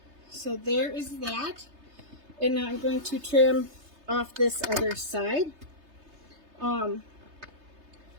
So there is that. And now I'm going to trim off this other side. Looks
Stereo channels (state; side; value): late; left; 3.3 ms